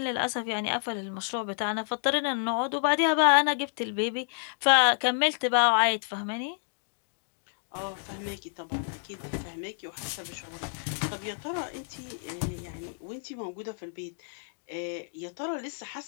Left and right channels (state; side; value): silent; right; digital silence